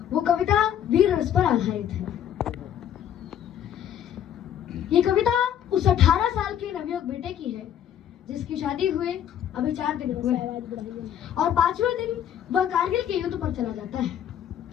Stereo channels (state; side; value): quieter; right; 10.0 dB